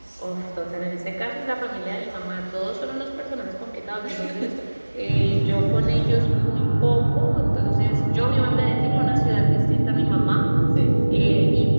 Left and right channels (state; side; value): inverted; both; correlation -1.00